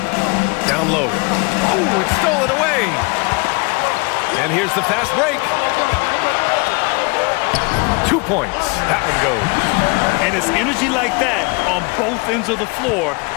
Down low. Oh, it's stolen away. And here's the fast break. 2 points. That one goes. And it's energy like that on both ends of the floor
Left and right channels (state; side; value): quieter; right; 29.9 dB